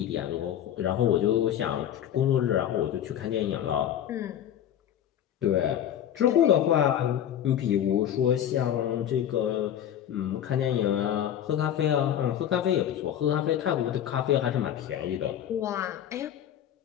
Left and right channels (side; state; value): right; quieter; 10.4 dB